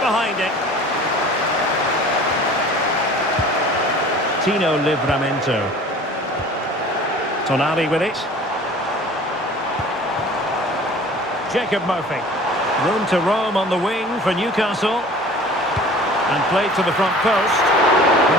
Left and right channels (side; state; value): both; normal; correlation 0.45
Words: behind it. Tino Livramento. Tonali with it. Jacob Murphy. Room to roam on the wing for Newcastle. And played to the front post.